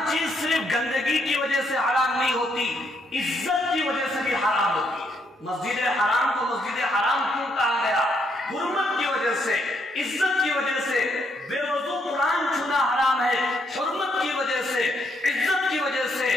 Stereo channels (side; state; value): both; normal; correlation 0.75